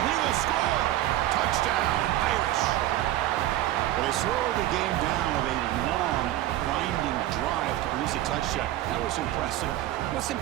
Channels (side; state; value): left; quieter; 14.4 dB